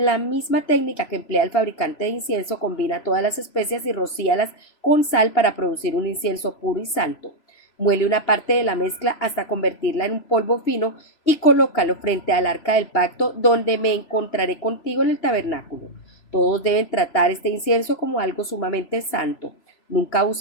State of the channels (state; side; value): late; right; 3.0 ms